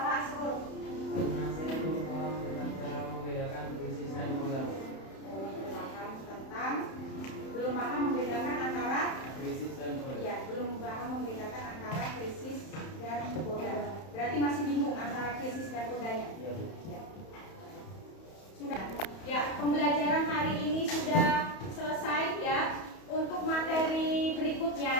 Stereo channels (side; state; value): right; late; 31 ms